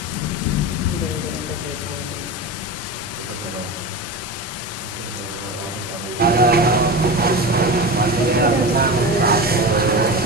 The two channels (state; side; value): normal; both; correlation 0.25